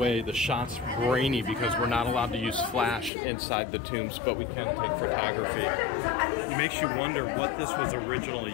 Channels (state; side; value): drops out; right; at 3.1 s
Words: the shot's grainy because we're not allowed to use flash inside the tombs, but we can take photography. It makes you wonder what this was originally